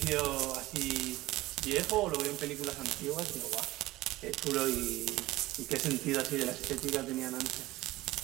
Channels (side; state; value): left; quieter; 18.0 dB